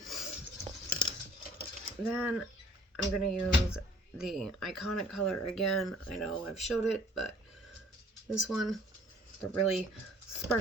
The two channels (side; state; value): both; normal; correlation 0.55